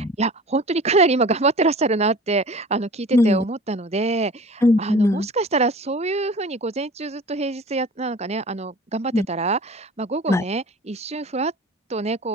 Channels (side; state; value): both; normal; correlation 0.42